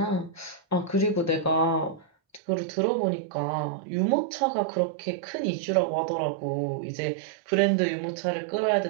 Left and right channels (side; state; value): left; drops out; at 2.4 s